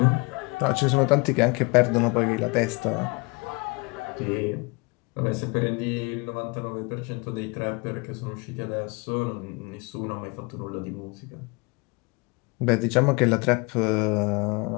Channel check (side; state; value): right; quieter; 28.4 dB